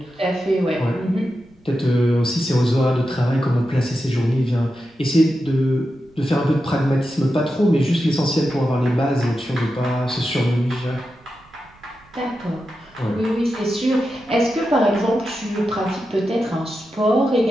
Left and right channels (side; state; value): right; noise; rumble, 29 dB below the sound